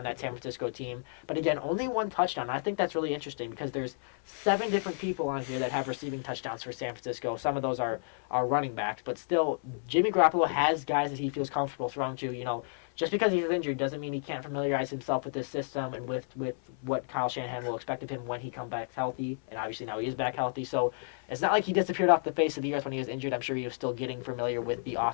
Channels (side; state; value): right; silent; 57 dB below the other